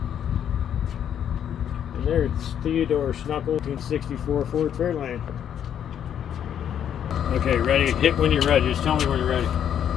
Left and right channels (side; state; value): right; quieter; 9.3 dB